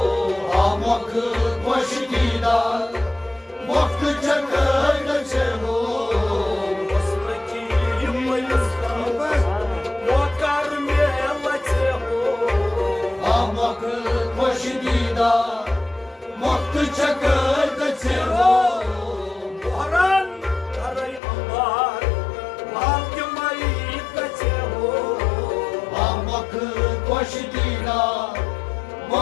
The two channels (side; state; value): right; drops out; at 21.2 s